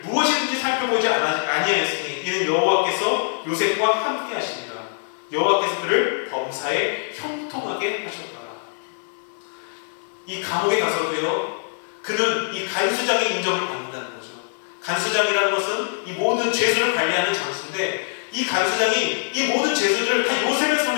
무엇이든지 살펴보지 아니하였으니 이는 여호와께서 요셉과 함께 하시니라. 여호와께서 그를 범사에 형통하게 하셨더라. 이 감옥에 가서도요, 그는 이 간수장의 인정을 받는다는 거죠. 간수장이라는 것은 이 모든 죄수를 관리하는 장수인데 이 간수장이 이 모든 죄수들을 다 요셉의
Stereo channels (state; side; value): silent; right; 63 dB below the other